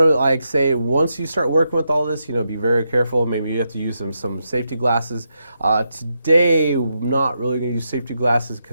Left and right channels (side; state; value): both; inverted; correlation -0.83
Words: like say, once you start working with all this, you know, be very careful. Maybe you have to use some safety glasses. Today, I'm not really going to use safety glasses